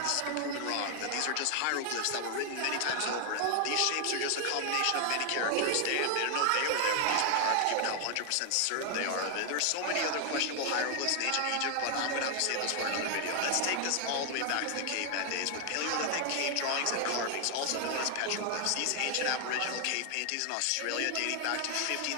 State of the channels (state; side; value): different; both; correlation 0.00